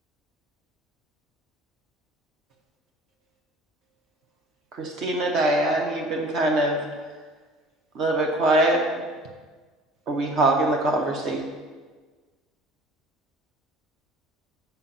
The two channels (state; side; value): normal; both; correlation 0.47